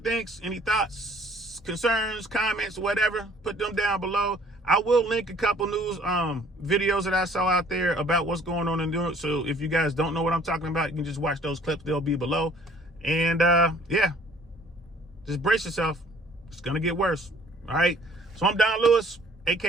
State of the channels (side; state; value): both; normal; correlation 0.56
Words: Any thoughts, concerns, comments, whatever. Put them down below. I will link a couple news videos that I saw out there about what's going on in New York. So if you guys don't know what I'm talking about, you can just watch those clips. They'll be below. And yeah, just brace yourself. It's going to get worse. All right. So I'm Don Lewis,